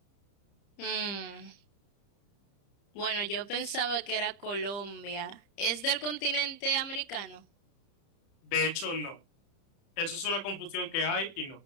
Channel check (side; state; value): right; late; 30 ms